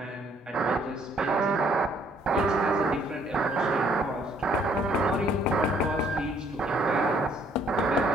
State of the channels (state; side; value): normal; both; correlation 0.64